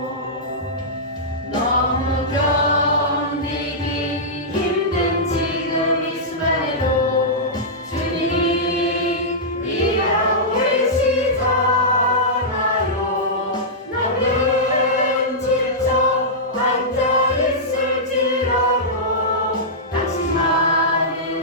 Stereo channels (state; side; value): normal; both; correlation -0.13